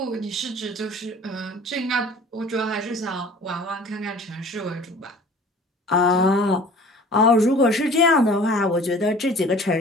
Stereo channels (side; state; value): both; normal; correlation 0.46